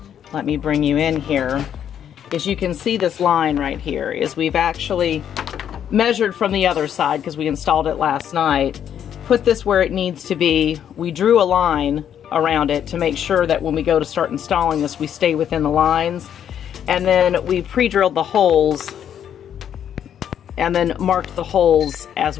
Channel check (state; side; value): quieter; right; 9.3 dB